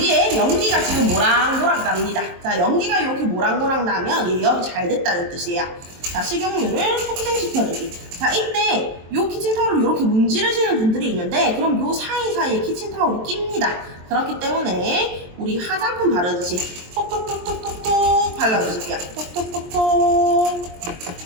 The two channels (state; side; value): late; left; 23 ms